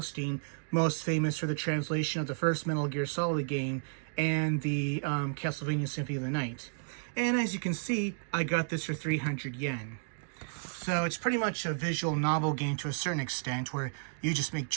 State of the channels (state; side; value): silent; left; digital silence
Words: most famous for the translation of the first Metal Gear Solid game and the Castlevania Symphony of the Night. And as you can see, I got this for 300 yen. So it's pretty much a visual novel game to a certain extent where you just make